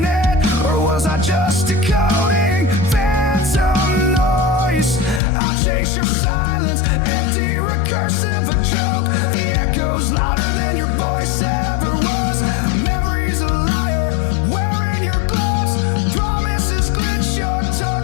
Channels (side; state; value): right; drops out; at 5.2 s